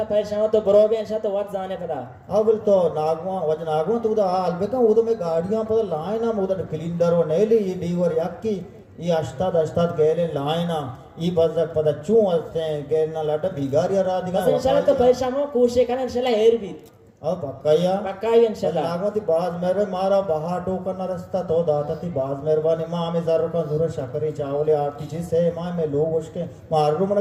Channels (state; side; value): identical; both; correlation 1.00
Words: परेशान तो बरोबे इंशाल्लाह तो वत जाने पता अब तो नागवा तो उदा अलबेका उद में गाड़ियां पता लायना उद क्लीनर व नेली ये डीवर याकी ये अष्टाद गेले लायना ये बजक पता चू असते गेलना लाटा बिगारिया रादिगा इंशाल्लाह तो परेशान हो कोशिश करना इंशाल्लाह हेर भी अब बक्का इंशाल्लाह नागवती बाज मेरे मारा बहा टोकन रस्ता तो दाता थी बाज मेहरबानी मां में जरूर का जरूर शकरी चावले आटी जी से मां में लोग उसके मारू मन